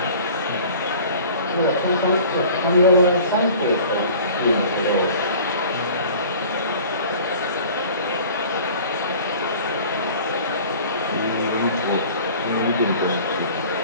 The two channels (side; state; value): both; inverted; correlation -0.45